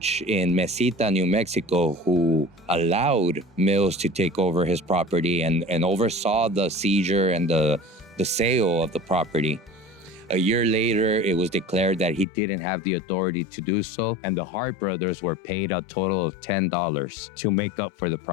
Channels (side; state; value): right; drops out; at 12.2 s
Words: in Mesita, New Mexico, who allowed Mills to take over his property and oversaw the seizure and the sale of the property. A year later, it was declared that he didn't have the authority to do so, and the Hart brothers were paid a total of $10 to make up for the